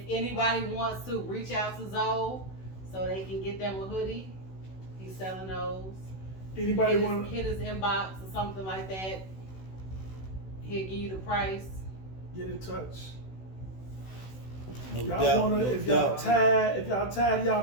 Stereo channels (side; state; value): right; late; 16 ms